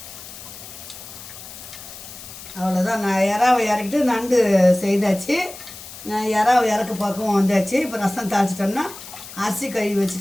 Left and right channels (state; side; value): noise; left; hiss, 14 dB below the sound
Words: அவ்வளோதான். நான் இறாவை இறக்கிட்டு நண்டு செய்தாச்சு. நான் இறாவை இறக்க பக்கம் வந்தாச்சு. இப்போ ரசம் தாளிச்சிட்டோம்னா, அரிசி கழுவி